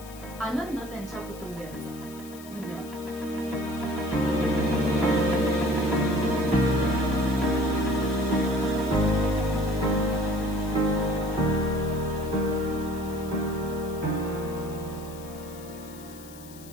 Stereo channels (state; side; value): noise; left; hiss, 19 dB below the sound